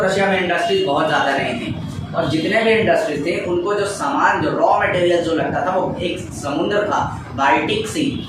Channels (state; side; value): identical; both; correlation 1.00